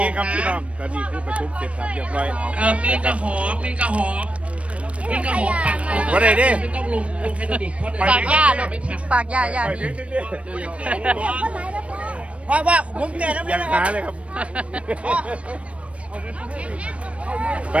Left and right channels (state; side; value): late; left; 0.062 ms